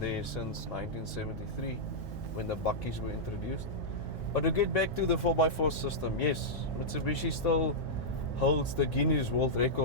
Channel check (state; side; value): normal; both; correlation -0.09